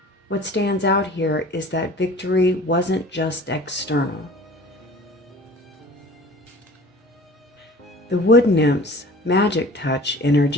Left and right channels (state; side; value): normal; both; correlation 0.45